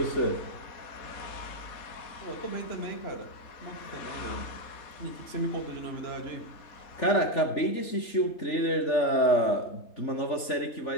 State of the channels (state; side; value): late; right; 3.4 ms